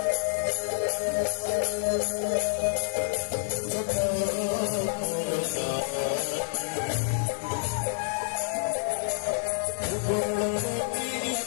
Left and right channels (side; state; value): right; silent; 59 dB below the other